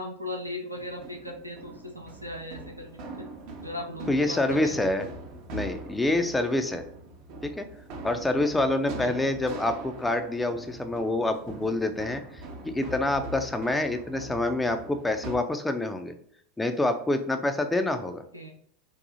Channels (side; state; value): both; normal; correlation 0.69